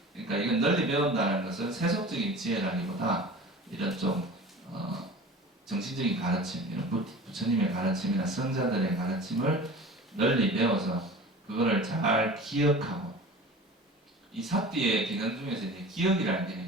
그러니까 이건 널리 배운다는 것은 세속적인 지혜라기보다 이런 좀 정신적인 가르침, 이런 부처님의 가르침이나 성자들의 가르침을 널리 배워서 그거를 잘 기억하고, 이 사띠의 기능 중에서 이제 기억이라는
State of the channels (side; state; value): both; normal; correlation 0.39